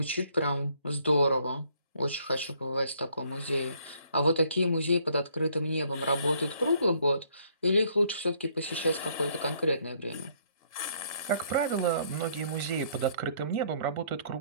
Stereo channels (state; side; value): inverted; both; correlation -0.65